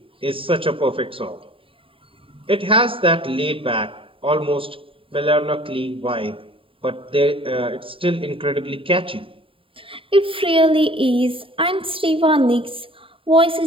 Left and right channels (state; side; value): late; left; 0.26 ms